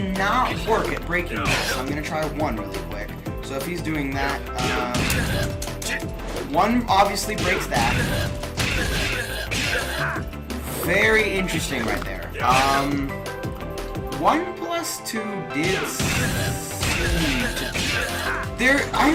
work at breaking this, so I'm gonna try 1 really quick. So if he's doing that, 1 obviously breaks that. Very interesting right there. 1 plus 2 did seem to... I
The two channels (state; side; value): identical; both; correlation 1.00